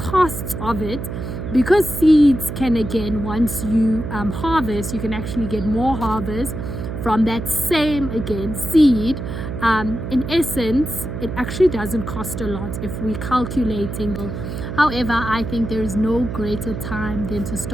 of it, because seeds can, again, once you harvest, you can actually get more harvest from that same, again, seed. In essence, it actually doesn't cost a lot if we're calculating. However, I think there is no greater time than to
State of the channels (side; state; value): right; noise; hum, 6 dB below the sound